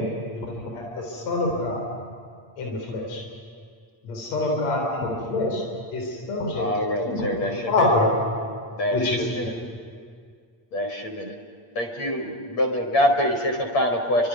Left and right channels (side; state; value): right; late; 8.6 ms